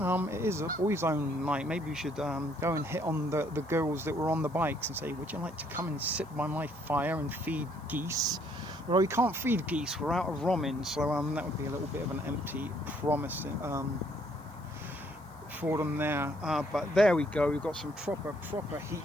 It is a boys only night. Maybe we should go and hit on the girls that were on the bikes and say, would you like to come and sit by my fire and feed geese? Well, we can't feed geese, we're out of romin, so that would be a little bit of an empty promise for them there. But there we go, we've got some proper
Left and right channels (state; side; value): noise; left; hiss, 28 dB below the sound